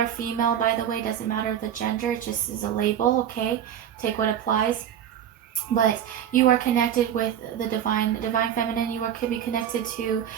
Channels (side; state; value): left; quieter; 9.7 dB